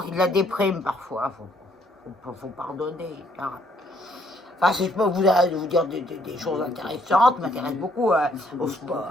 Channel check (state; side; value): normal; both; correlation 0.67